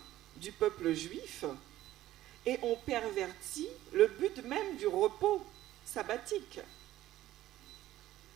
du peuple juif et on pervertit le but même du repos sabbatique.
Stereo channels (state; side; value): quieter; left; 14.4 dB